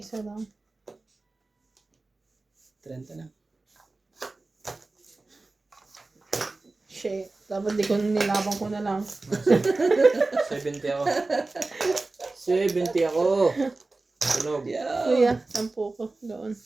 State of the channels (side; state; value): left; quieter; 3.3 dB